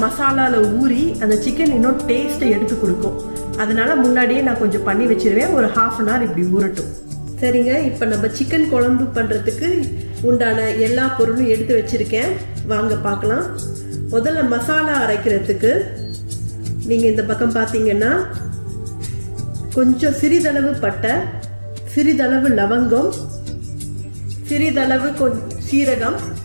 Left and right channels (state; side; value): inverted; both; correlation -1.00